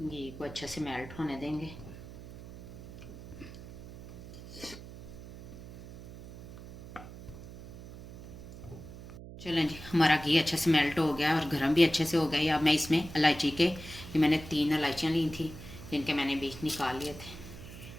को अच्छे से मेल्ट होने देंगे। चलें जी, हमारा घी अच्छे से मेल्ट हो गया और गर्म भी अच्छे से हो गया। अब मैं इसमें इलायची के, ये मैंने 3 इलायचियाँ ली थी जिनके मैंने बीज निकाल लिए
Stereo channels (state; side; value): noise; right; hum, 14 dB below the sound